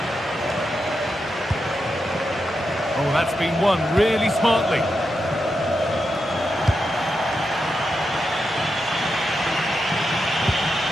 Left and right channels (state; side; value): normal; both; correlation 0.87